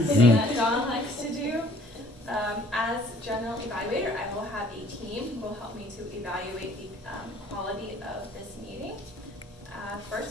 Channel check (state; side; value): normal; both; correlation 0.56